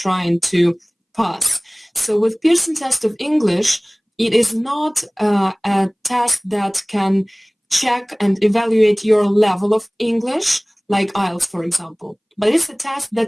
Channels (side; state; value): both; identical; correlation 1.00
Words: to pass? So with Pearson Test of English, it is not a test that can check and evaluate your level of English, like IELTS, for example, but it's a test